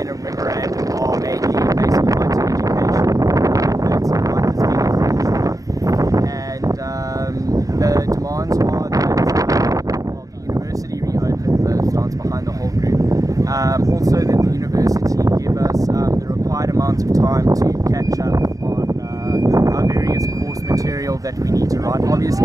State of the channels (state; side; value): late; left; 0.17 ms